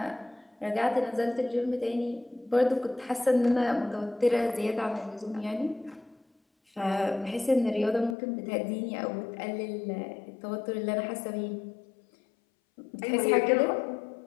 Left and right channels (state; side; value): drops out; right; at 8.2 s